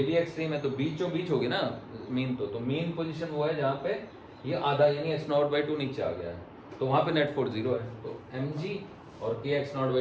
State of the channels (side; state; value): both; identical; correlation 1.00